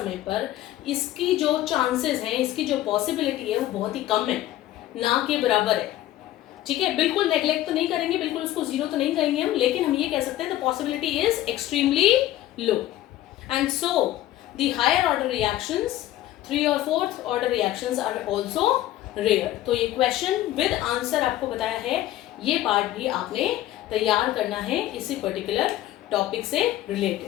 पर, इसकी जो चांसेस हैं, इसकी जो पॉसिबिलिटी है वो बहुत ही कम है, ना के बराबर है। ठीक है, बिल्कुल नेग्लेक्ट तो नहीं करेंगे, बिल्कुल उसको जीरो तो नहीं कहेंगे हम, लेकिन हम ये कह सकते हैं the possibility is extremely low. And so the higher order reactions, 3 और 4th order reactions are also rare. तो ये क्वेश्चन विद आंसर आपको बताया है, ये पार्ट भी आपने तैयार करना है इसी पर्टिकुलर टॉपिक से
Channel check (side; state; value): right; quieter; 14.3 dB